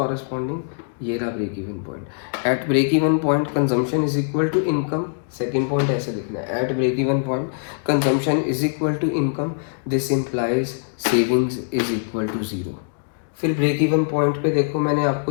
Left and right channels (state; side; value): silent; right; digital silence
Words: ये रहा break even point. At break even point consumption is equal to income, second point ऐसे लिखना है, at break even point consumption is equal to income, this implies savings is equal to zero. फिर break even point पे देखो, मैंने